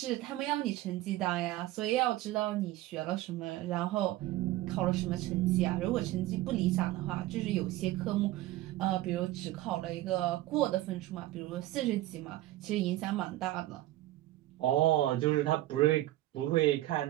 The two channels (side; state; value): left; quieter; 15.9 dB